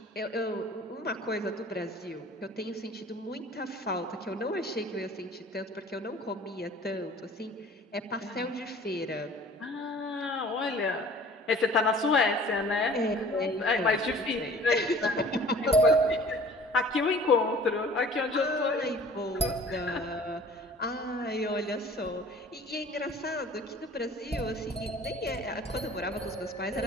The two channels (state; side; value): normal; both; correlation 0.48